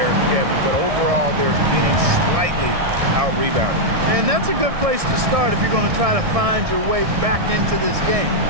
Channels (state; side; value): late; left; 1.6 ms